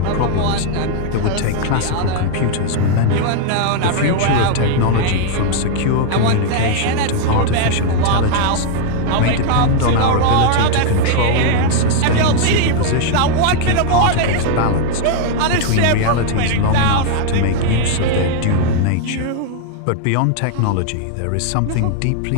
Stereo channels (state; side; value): different; both; correlation 0.00